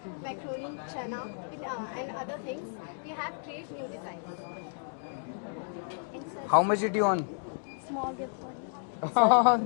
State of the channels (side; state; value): right; silent; digital silence